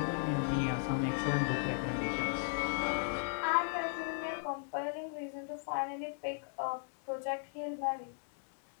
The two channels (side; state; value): right; silent; digital silence